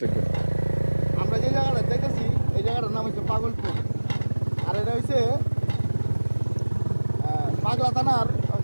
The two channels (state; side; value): inverted; both; correlation -1.00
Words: থাকবেন আমরা যে জায়গাটা দেখেছি এই জায়গাটার নাম হচ্ছে পাগলপুর আর এটা হচ্ছে পাগলা থানার